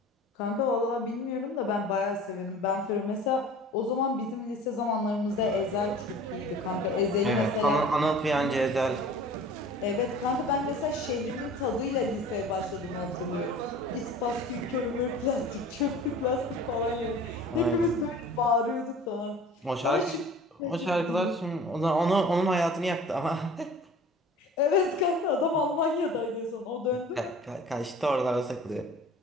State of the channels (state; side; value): normal; both; correlation 0.43